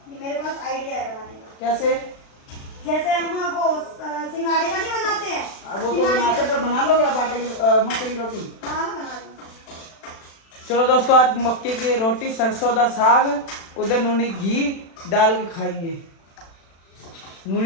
मेरे पास आइडिया है बनाने का। कैसे? जैसे हम वो सिंगाड़े का नहीं बनाते हैं, वो तो बनाते, पर बना लोगे आप आटे की मक्के की रोटी? हाँ बना लूँ। चलो दोस्तों, आज मक्के की रोटी, सरसों दा साग, उधर नूनी घी डाल के खाएंगे।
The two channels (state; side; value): late; right; 36 ms